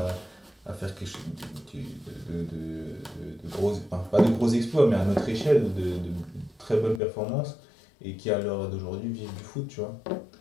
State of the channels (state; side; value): drops out; right; at 7.0 s